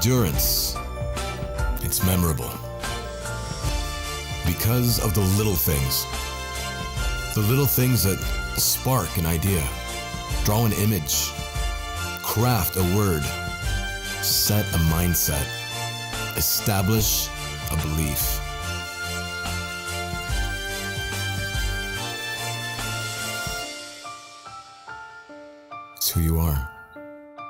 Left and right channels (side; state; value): both; identical; correlation 1.00